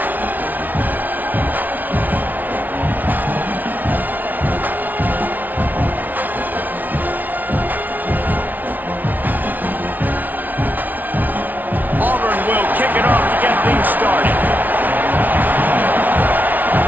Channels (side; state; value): left; late; 0.081 ms